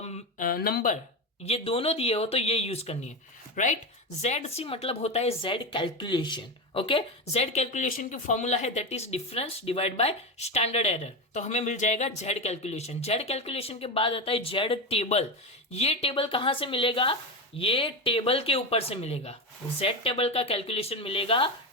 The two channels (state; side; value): normal; both; correlation 0.16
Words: नंबर ये दोनों दिए हो तो ये यूज करनी है, राइट। जेड सी मतलब होता है Z calculation, okay. Z calculation की फॉर्मूला है that is difference divide by standard error, तो हमें मिल जाएगा जेड कैलकुलेशन। जेड कैलकुलेशन के बाद आता है जेड टेबल। ये टेबल कहां से मिलेगा, ये टेबल के ऊपर से मिलेगा, जेड टेबल का कैलकुलेशन मिलेगा